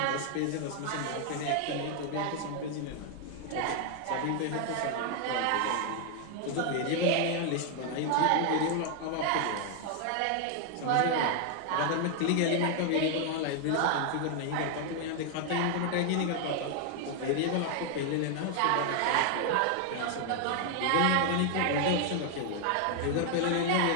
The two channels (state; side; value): different; both; correlation 0.00